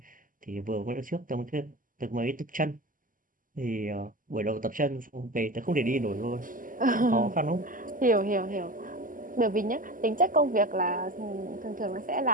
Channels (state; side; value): late; left; 0.40 ms